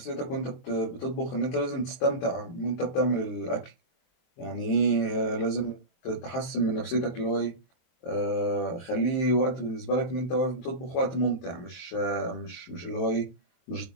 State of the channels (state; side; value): late; right; 23 ms